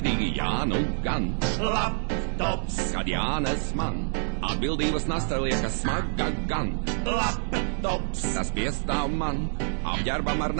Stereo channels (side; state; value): left; silent; 60 dB below the other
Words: jā, nu gan. Laptops, kad jānes man atbildības nasta liekas smaga gan. Laptops, tas piestāv man apģērbam ar